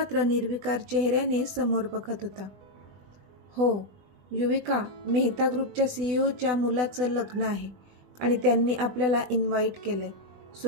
निर्विकार चेहऱ्याने समोर बघत होता. हो युविका, मेहता ग्रुपच्या CEOच्या मुलाचं लग्न आहे आणि त्यांनी आपल्याला इन्व्हाइट केलं आहे,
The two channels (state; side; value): late; left; 20 ms